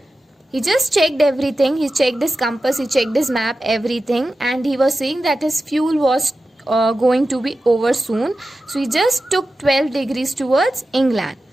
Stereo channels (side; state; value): both; normal; correlation 0.93